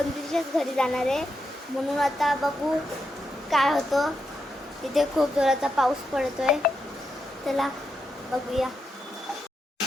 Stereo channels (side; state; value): both; normal; correlation 0.84